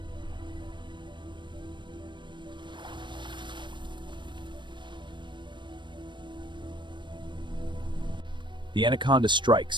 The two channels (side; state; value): left; late; 0.22 ms